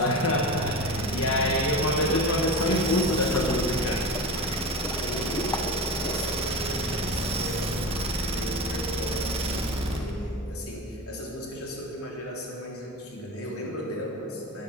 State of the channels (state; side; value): normal; both; correlation 0.27